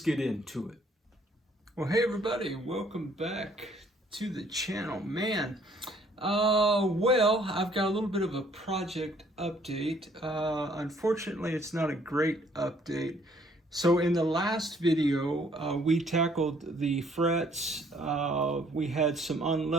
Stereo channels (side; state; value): both; normal; correlation 0.62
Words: into it. Well, hey everybody, welcome back to the channel. Man, well, I've got a little bit of a project update. Unfortunately, it's not a great update. So in the last video, we tackled the frets. We had some